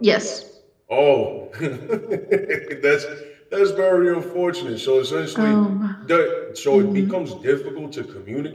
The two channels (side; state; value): both; identical; correlation 1.00